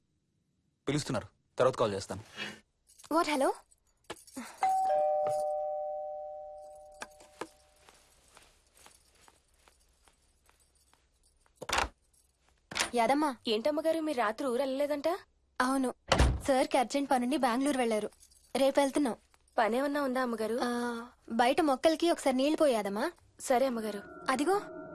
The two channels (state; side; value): identical; both; correlation 1.00